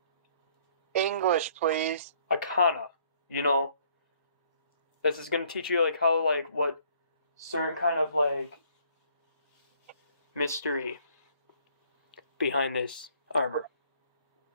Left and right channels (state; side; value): inverted; both; correlation -0.62